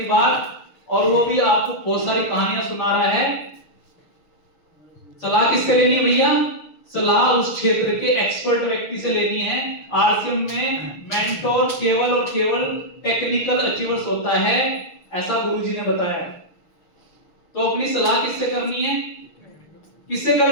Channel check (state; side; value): late; right; 6.5 ms